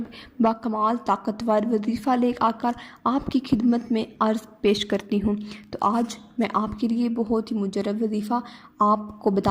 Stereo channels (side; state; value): both; identical; correlation 1.00